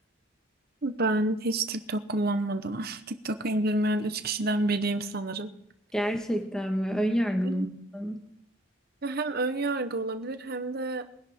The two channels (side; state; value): both; normal; correlation 0.56